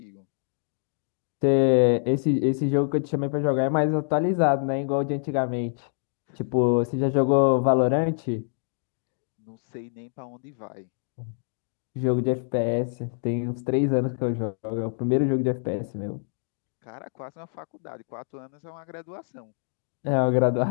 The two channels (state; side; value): silent; right; digital silence